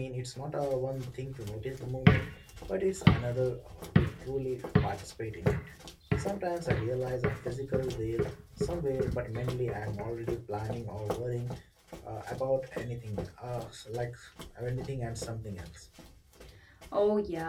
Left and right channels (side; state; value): both; identical; correlation 1.00